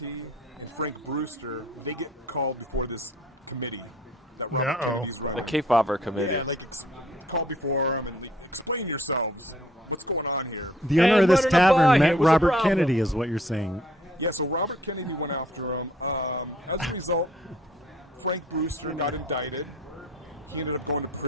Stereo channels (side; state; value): both; normal; correlation 0.58